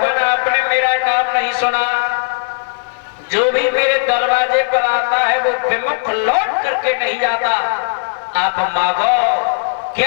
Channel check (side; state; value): right; silent; 58 dB below the other